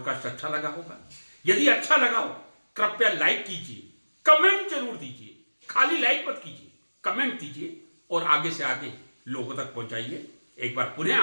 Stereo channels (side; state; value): both; inverted; correlation -1.00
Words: अच्छा लगा होगा। यदि अच्छा लगा हो, कृपया लाइक कीजिए, कमेंट जरूर दीजिए, खाली लाइक मत कीजिए, कमेंट दीजिए और आगे से आगे लोगों तक पहुंचाइए। एक बार पुनः